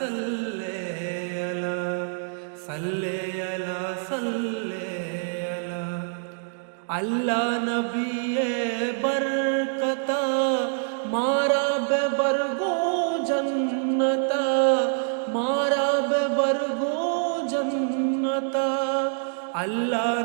अला सल्ले अला सल्ले अला अल्लाह नबी बरकता मारा बेबरगो जन्नता मारा बेबरगो जन्नता अल्लाह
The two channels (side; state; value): left; silent; digital silence